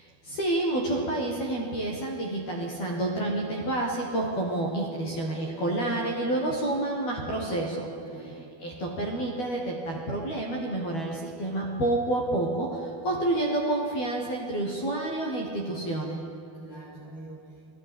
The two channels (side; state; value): right; late; 12 ms